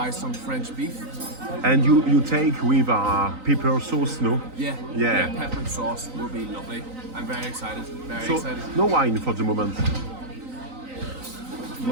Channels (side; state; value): left; late; 3.9 ms